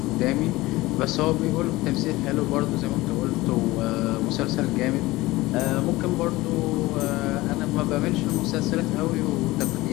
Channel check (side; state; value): right; quieter; 19.3 dB